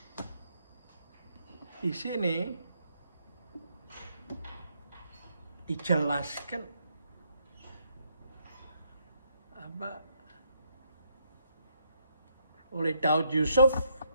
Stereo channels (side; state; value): both; inverted; correlation -0.73